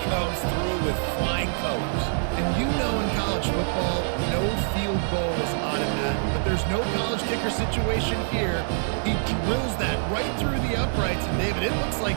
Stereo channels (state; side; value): silent; left; digital silence